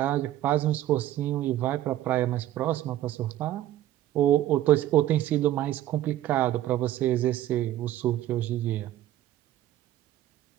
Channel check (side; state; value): left; quieter; 13.4 dB